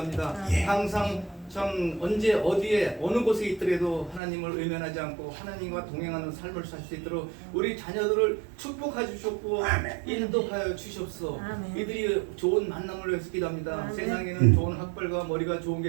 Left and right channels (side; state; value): left; drops out; at 4.2 s